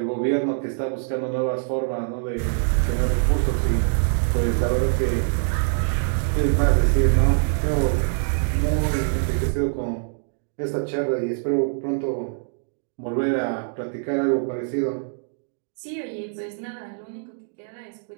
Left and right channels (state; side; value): silent; left; digital silence